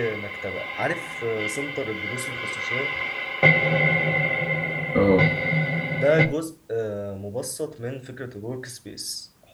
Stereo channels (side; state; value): both; identical; correlation 1.00